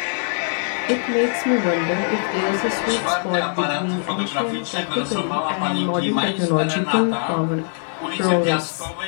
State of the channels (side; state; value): right; silent; 59 dB below the other